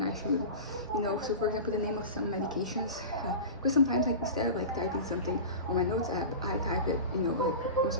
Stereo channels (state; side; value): inverted; both; correlation -0.30